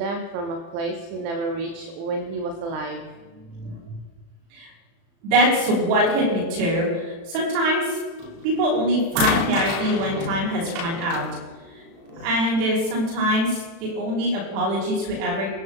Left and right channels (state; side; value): late; left; 36 ms